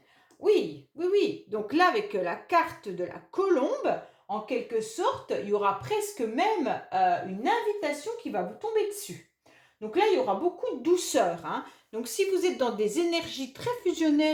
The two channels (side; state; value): both; identical; correlation 1.00